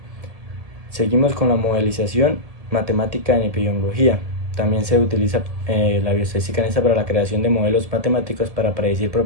Seguimos con la modelización matemática en epidemiología. También se utiliza la bioestadística en esta para la creación de modelos matemáticos para predecir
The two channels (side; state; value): left; late; 1.7 ms